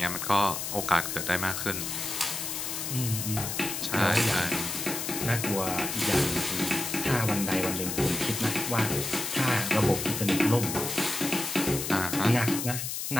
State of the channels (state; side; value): noise; left; hiss, 4 dB below the sound